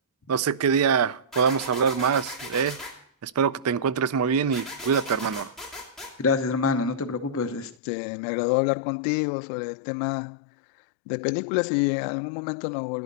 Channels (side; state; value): right; drops out; at 7.8 s